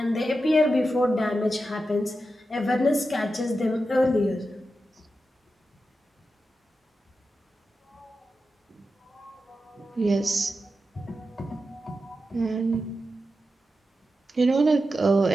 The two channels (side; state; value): both; normal; correlation 0.90